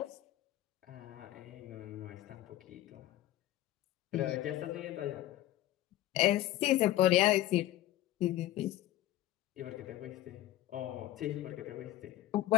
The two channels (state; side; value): quieter; right; 14.6 dB